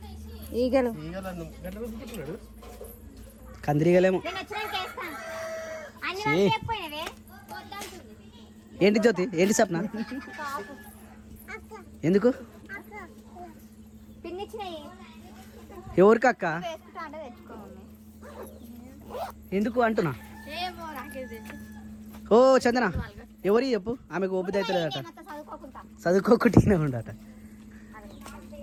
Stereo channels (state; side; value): identical; both; correlation 1.00